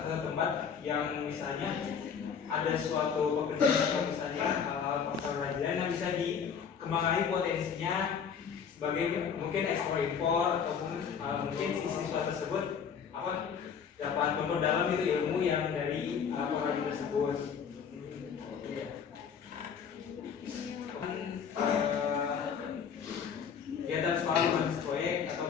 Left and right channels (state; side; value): quieter; right; 7.0 dB